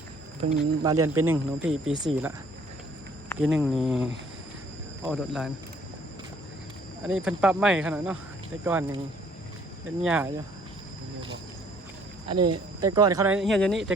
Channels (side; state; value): both; normal; correlation 0.60